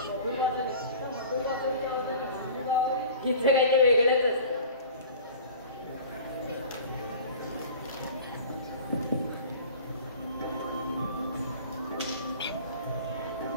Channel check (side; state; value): both; inverted; correlation -0.41